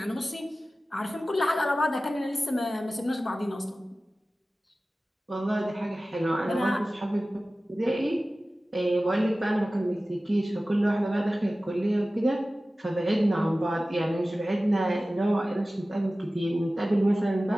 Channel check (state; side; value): normal; both; correlation 0.96